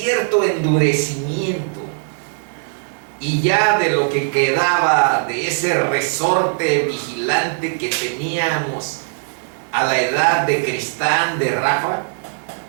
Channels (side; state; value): left; silent; digital silence